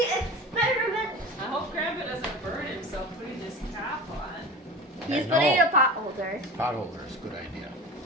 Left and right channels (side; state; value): both; normal; correlation 0.33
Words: experiment. I hope Grandpa doesn't burn himself putting this cap on. He's I putting know. a pot holder. Pot holder is a good idea.